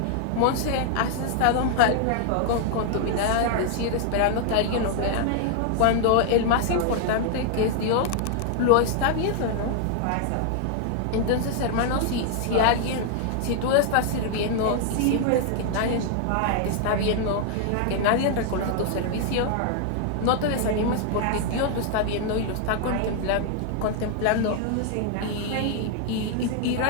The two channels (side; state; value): both; different; correlation 0.00